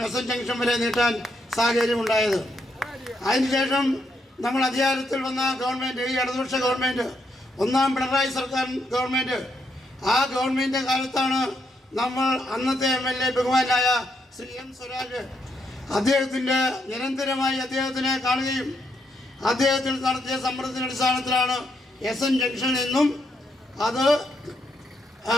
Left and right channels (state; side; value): normal; both; correlation 0.78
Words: S junction വരെ നീട്ടാൻ സാഹചര്യമുണ്ടായത്. അതിനുശേഷം നമ്മൾ അധികാരത്തിൽ വന്ന ഗവൺമെൻറ്, ഈ ഇടതുപക്ഷ ഗവൺമെൻറ്, ഒന്നാം പിണറായി സർക്കാർ ഗവൺമെൻറ്, ആ ഗവൺമെൻറ് കാലത്താണ് നമ്മൾ അന്നത്തെ MLA ബഹുമാനായ ശ്രീ M. സ്വരാജ് അദ്ദേഹത്തിൻ്റെ നിരന്തരമായി അദ്ദേഹത്തിനെ കാണുകയും അദ്ദേഹത്തിൽ നടത്തിയ സമ്മർദ്ദത്തിൻ്റെ അടിസ്ഥാനത്തിലാണ് SN ജംഗ്ഷനിൽ നിന്നും അത്